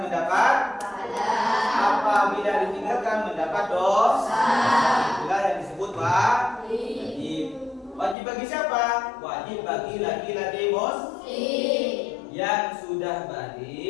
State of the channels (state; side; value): drops out; right; at 8.2 s